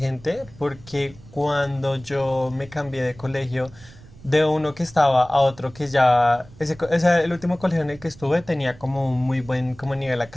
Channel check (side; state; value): right; noise; rumble, 22 dB below the sound